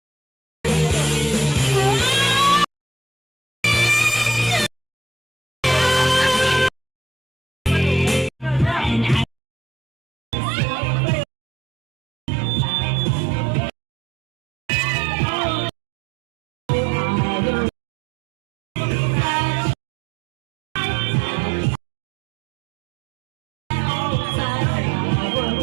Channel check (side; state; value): left; drops out; at 9.2 s